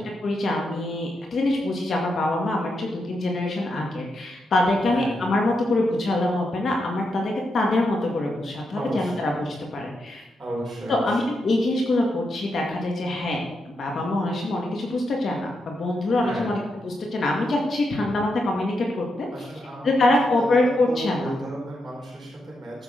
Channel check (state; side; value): normal; both; correlation 0.84